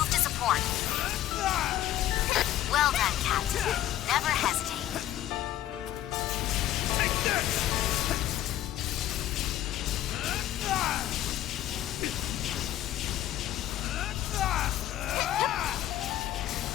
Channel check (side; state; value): right; quieter; 13.1 dB